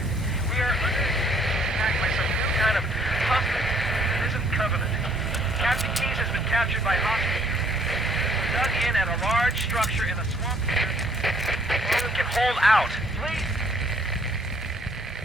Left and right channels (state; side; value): normal; both; correlation 0.62